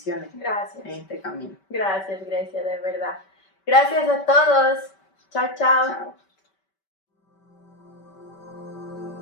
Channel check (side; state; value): right; late; 5.2 ms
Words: Gracias. En este camino. Gracias, Grecia, de verdad. Gracias a todos. Chao, chao. Chao.